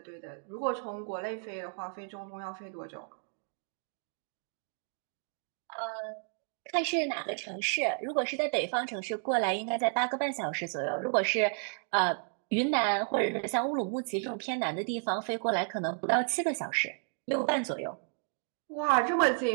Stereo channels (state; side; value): silent; left; 56 dB below the other